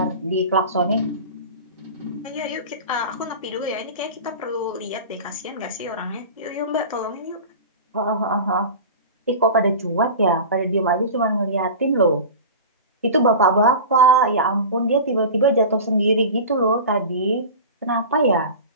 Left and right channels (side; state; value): both; inverted; correlation -0.32